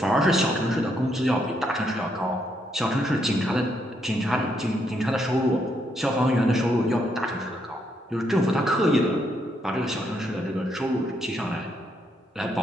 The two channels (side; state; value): both; normal; correlation 0.76